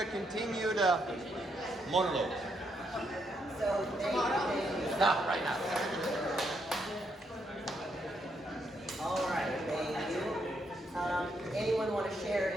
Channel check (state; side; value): normal; both; correlation 0.77